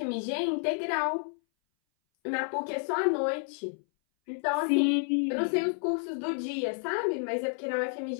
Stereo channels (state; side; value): silent; right; 58 dB below the other